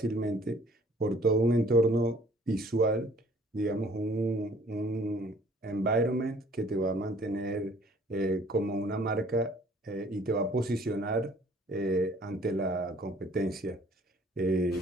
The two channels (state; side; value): normal; both; correlation 0.56